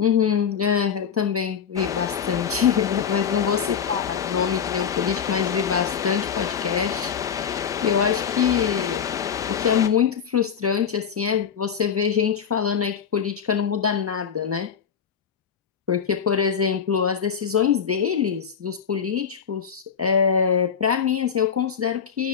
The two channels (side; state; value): right; quieter; 7.3 dB